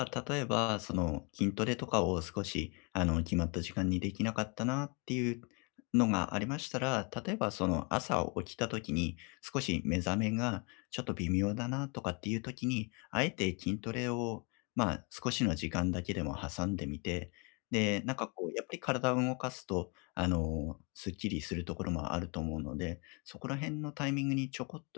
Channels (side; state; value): right; quieter; 32.9 dB